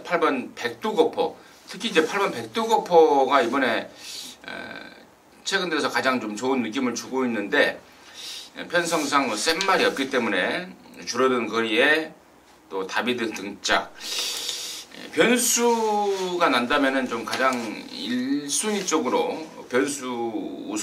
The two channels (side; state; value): both; identical; correlation 1.00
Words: 백두거포, 특히 이제 8번 백두거포가 이번에 최근 들어서 가장 좀 좋은 느낌을 주고 있는데, 편성상 센 말이 없기 때문에 줄어든 거리에 또 다비드 등짝, 변수가 난다면은 좀 가장 1순위 쪽으로 변수